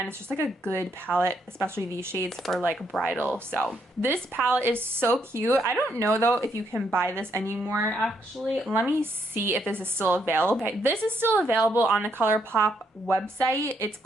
it's just like a good palette, especially these shades for like bridal. So this palette is so cute. I don't know though if you can buy this anymore actually. Let me see if this is still available. Okay, this is still available on the ColourPop website. It's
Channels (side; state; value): both; normal; correlation 0.75